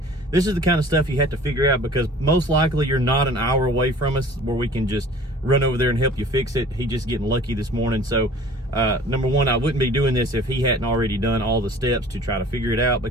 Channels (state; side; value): normal; both; correlation 0.47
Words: This is the kind of stuff you have to figure out because most likely you're not an hour away from us where we can just run over there and help you fix it. He just getting lucky this morning. So number one, I wouldn't be doing this if he hadn't already done all the steps to try to figure it out,